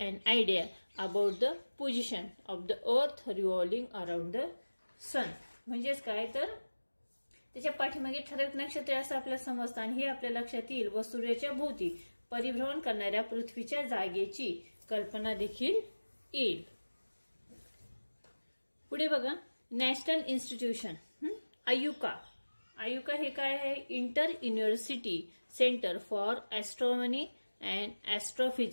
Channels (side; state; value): both; inverted; correlation -1.00